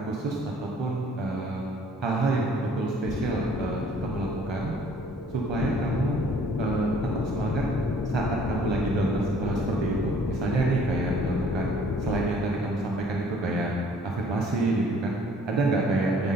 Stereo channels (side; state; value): both; normal; correlation 0.57